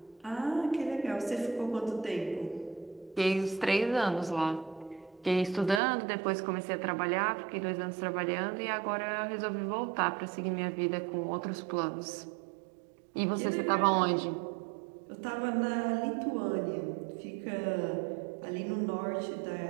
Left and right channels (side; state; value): left; drops out; at 5.8 s